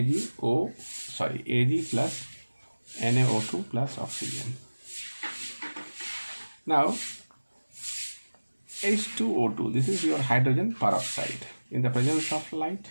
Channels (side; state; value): both; inverted; correlation -1.00